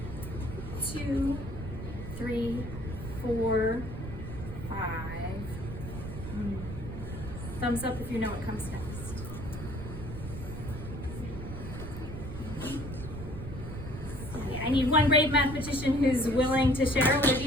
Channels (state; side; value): noise; right; rumble, 8 dB below the sound